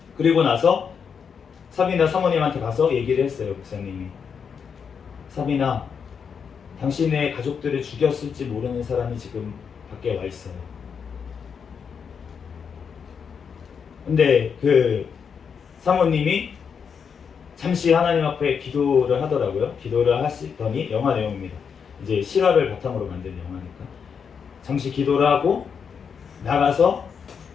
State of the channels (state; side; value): quieter; right; 6.6 dB